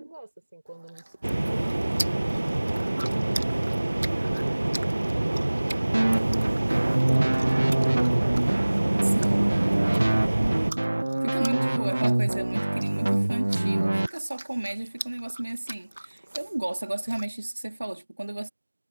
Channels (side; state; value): both; inverted; correlation -1.00